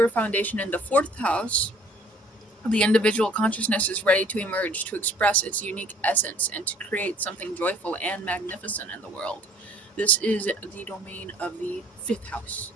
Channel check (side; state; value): both; normal; correlation 0.56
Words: foundation in the fourth house, the individual consciousness is ready to emerge to express its unique essence and to create something joyful and magnificent in the world. This is the domain of the fifth house.